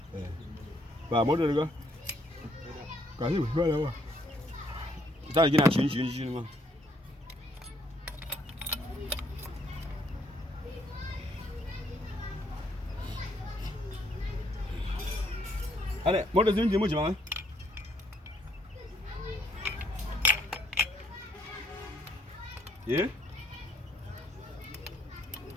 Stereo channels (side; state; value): both; normal; correlation 0.69